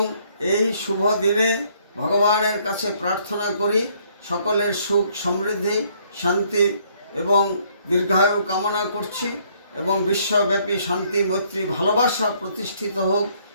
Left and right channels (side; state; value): both; inverted; correlation -0.65